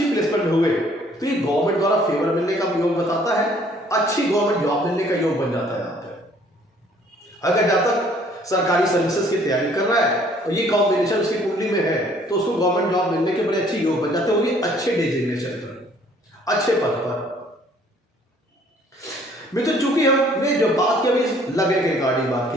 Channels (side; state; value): both; normal; correlation 0.59